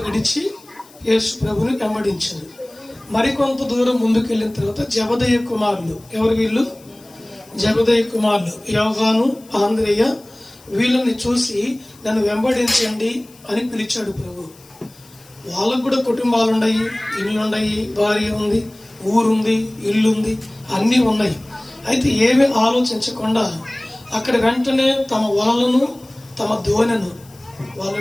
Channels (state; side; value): noise; left; hiss, 26 dB below the sound